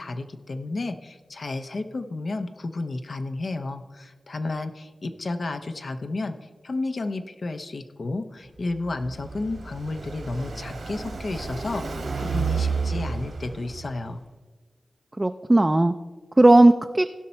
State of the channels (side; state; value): both; normal; correlation 0.97